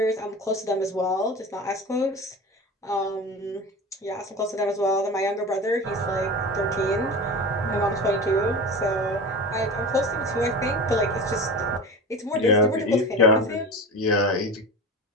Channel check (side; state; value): both; normal; correlation 0.30